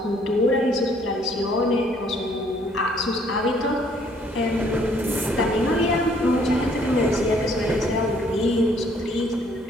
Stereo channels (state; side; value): normal; both; correlation 0.63